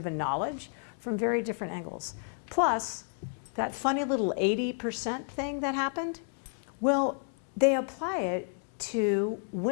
and knowledge from very different angles. Plus, that funny little 80% thing that happened, well, they apply it to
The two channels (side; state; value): right; silent; 57 dB below the other